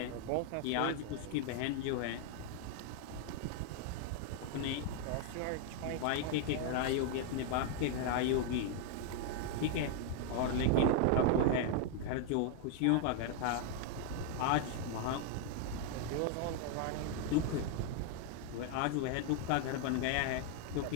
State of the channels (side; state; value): both; different; correlation 0.00